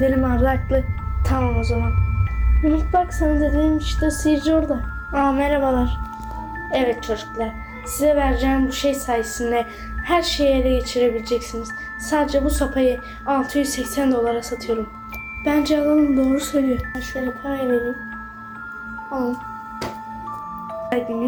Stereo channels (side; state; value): both; identical; correlation 1.00